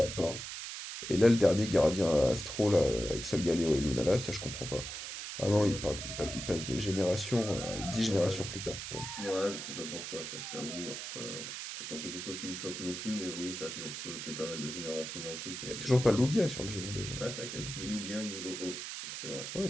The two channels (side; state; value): right; noise; hiss, 7 dB below the sound